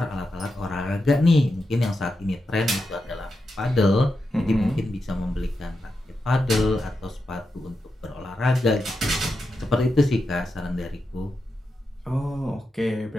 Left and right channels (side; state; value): both; normal; correlation 0.87